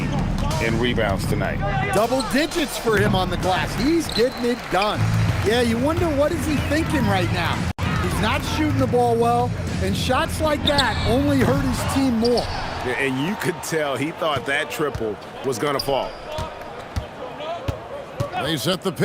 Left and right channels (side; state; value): both; identical; correlation 1.00